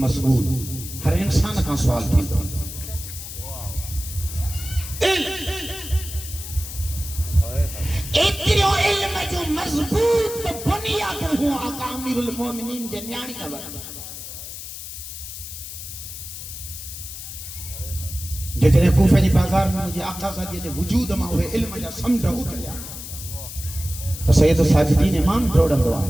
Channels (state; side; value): noise; left; hiss, 10 dB below the sound